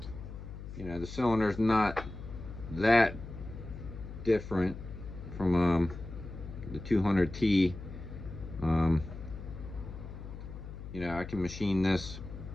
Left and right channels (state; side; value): noise; left; hum, 11 dB below the sound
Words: The cylinder's not that different from the 200T. I can machine this